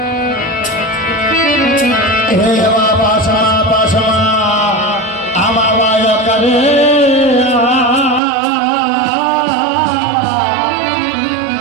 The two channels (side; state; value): left; drops out; at 8.2 s